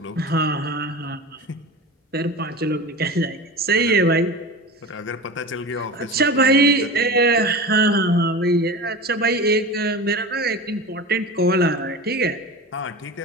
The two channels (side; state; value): both; normal; correlation 0.31